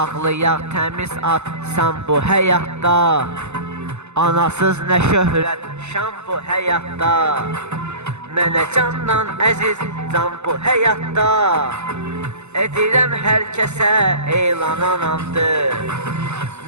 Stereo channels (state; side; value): late; left; 0.82 ms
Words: təmiz ad sən bu həyatda. Anasız nə şöhrət şan bu həyatda. Mənə candan əziz can bu həyatda. Edirəm hər kəsə elan anamdır.